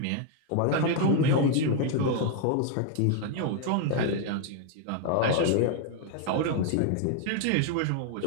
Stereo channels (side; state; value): both; different; correlation 0.01